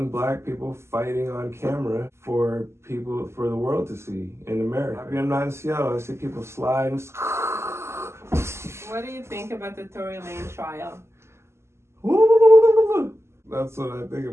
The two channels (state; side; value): late; left; 0.13 ms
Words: black people fighting on camera for the world to see in America. I'm not in Seattle. I see people slide and... What do you think about the Tory Lane trial? That's what I think